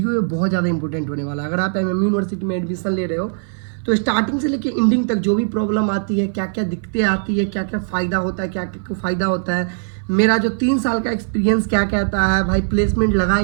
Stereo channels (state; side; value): silent; left; 59 dB below the other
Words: है बहुत ज़्यादा इंपॉर्टेंट होने वाला है। अगर आप एमएम यूनिवर्सिटी में एडमिशन ले रहे हो तो स्टार्टिंग से लेकर एंडिंग तक जो भी प्रॉब्लम आती है, क्या क्या दिक्कतें आती है, क्या क्या फ़ायदा होता है, क्या क्या फ़ायदा होता है, मेरा जो 3 साल का एक्सपीरियंस क्या कहता है भाई, प्लेसमेंट लगा